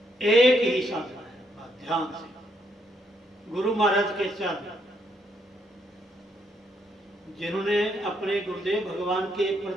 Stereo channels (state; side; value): normal; both; correlation 0.75